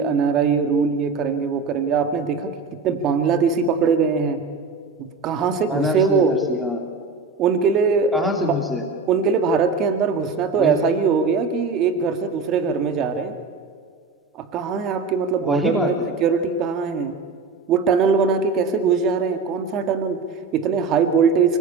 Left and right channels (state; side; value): quieter; left; 4.6 dB